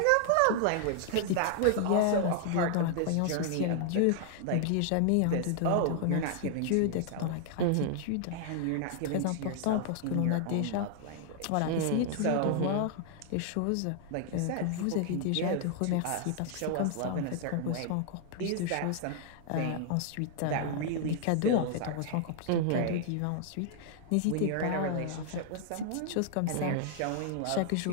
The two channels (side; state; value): both; different; correlation 0.00